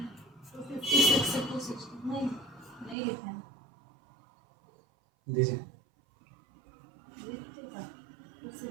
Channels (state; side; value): drops out; left; at 3.0 s